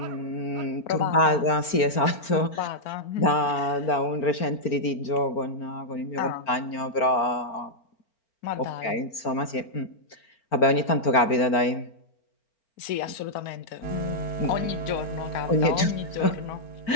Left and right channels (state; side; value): late; right; 4.4 ms